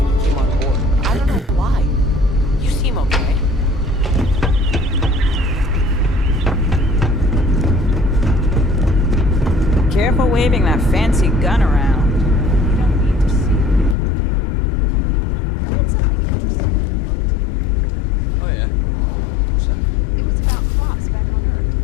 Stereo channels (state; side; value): drops out; right; at 14.0 s